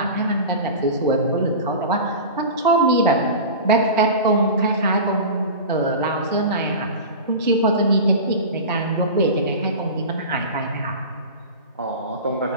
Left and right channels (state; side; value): inverted; both; correlation -0.30